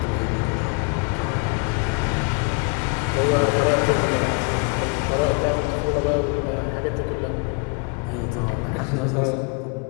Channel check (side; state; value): right; quieter; 34.5 dB